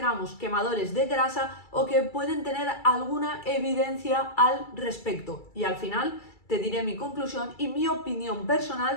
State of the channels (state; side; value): late; right; 2.3 ms